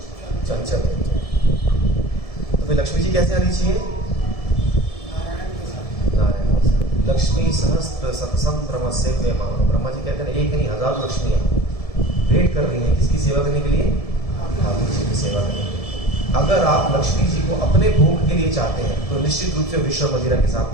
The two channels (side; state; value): right; late; 1.7 ms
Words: चंचल। तो फिर लक्ष्मी जी कैसे आनी चाहिए? नारायण। लक्ष्मी सहस्त्र सत्संग ब्रह्मस्य वे मानो। ब्रह्मा जी कहते हैं एक नहीं, हजारों लक्ष्मियां वेट कर रही हैं किसकी सेवा करने के लिए? ठाकुर जी की सेवा करने के लिए। अगर आप लक्ष्मी जी को अपने भोग के लिए चाहते हैं तो निश्चित रूप से विष और मदिरा के साथ